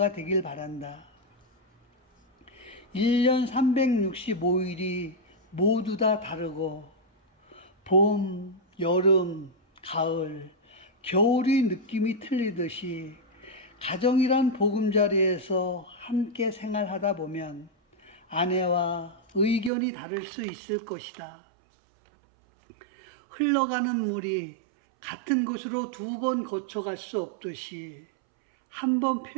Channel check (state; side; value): drops out; left; at 19.7 s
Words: 되길 바란다. 1년 365일이 모두 다 다르고 봄, 여름, 가을, 겨울이 느낌이 틀리듯이 가정이란 보금자리에서 함께 생활하다 보면 아내와 의견이 다를 수 있을 것이다. 흘러가는 물이 같은 곳으로 2번 거쳐갈 수 없듯이 한 번